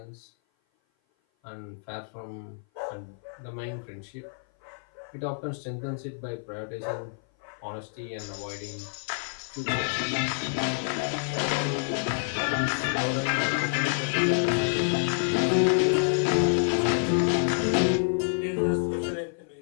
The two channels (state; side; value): silent; right; 56 dB below the other